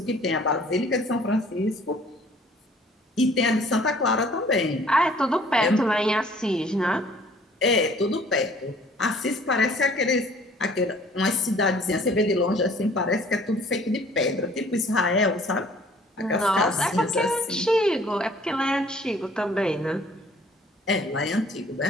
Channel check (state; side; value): normal; both; correlation 0.55